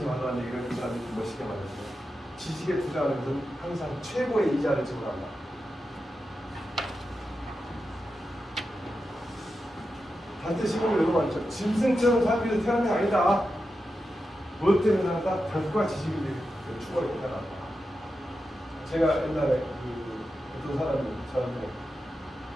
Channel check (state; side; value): normal; both; correlation 0.89